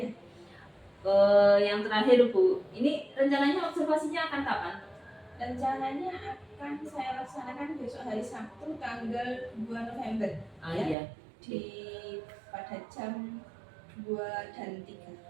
Yang terakhir Bu, ini rencananya observasinya akan kapan? Rencananya akan saya laksanakan besok hari Sabtu tanggal 2 November. Iya. Pada jam 2 dan 3.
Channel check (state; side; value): drops out; left; at 11.0 s